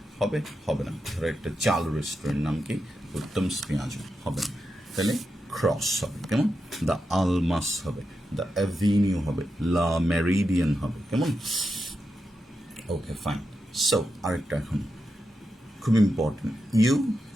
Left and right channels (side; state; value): both; normal; correlation 0.88